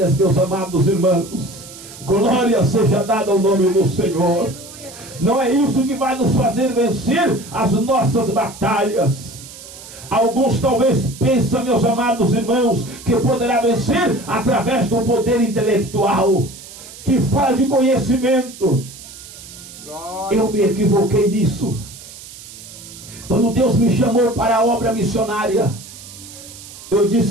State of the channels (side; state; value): right; noise; hiss, 16 dB below the sound